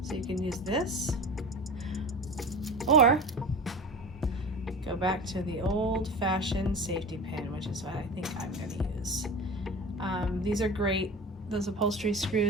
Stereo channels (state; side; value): normal; both; correlation 0.32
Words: So you can use this, or go back to the old-fashioned safety pin, which is what I think I'm going to use. These are great. Those upholstery